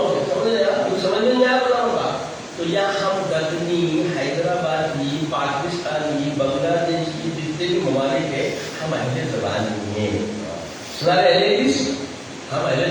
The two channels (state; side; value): identical; both; correlation 1.00